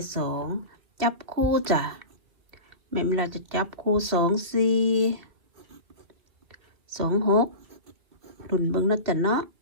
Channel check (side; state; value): left; late; 2.2 ms